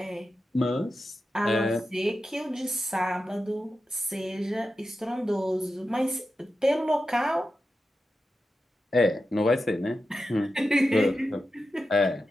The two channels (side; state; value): both; normal; correlation 0.91